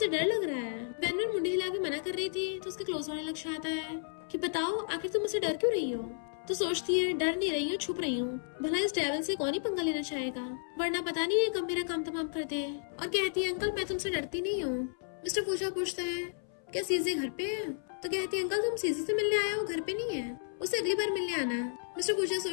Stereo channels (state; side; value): silent; right; 56 dB below the other